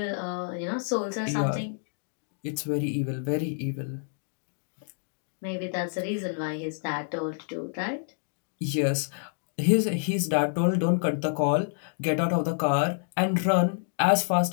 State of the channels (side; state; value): right; silent; digital silence